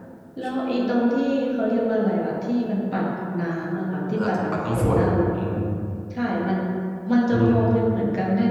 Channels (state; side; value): identical; both; correlation 1.00